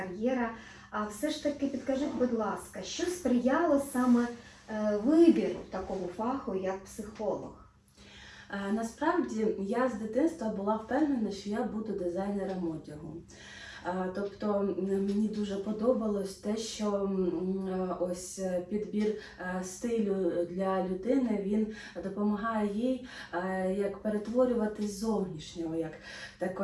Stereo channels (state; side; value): identical; both; correlation 1.00